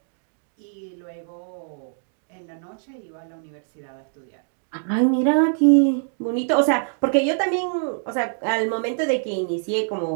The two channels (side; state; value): left; silent; 62 dB below the other